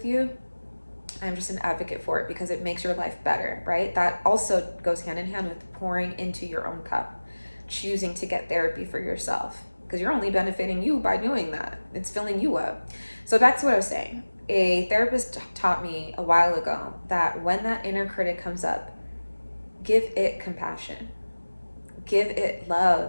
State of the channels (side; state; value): both; inverted; correlation -1.00